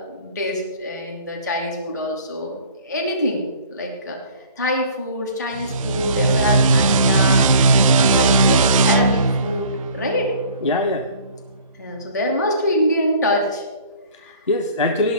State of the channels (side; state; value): both; inverted; correlation -0.51